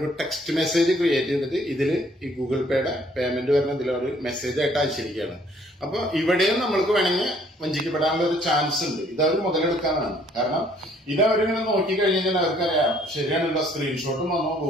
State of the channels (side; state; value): both; normal; correlation 0.62